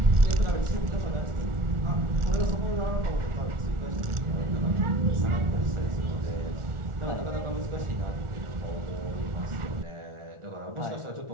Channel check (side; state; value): left; late; 1.4 ms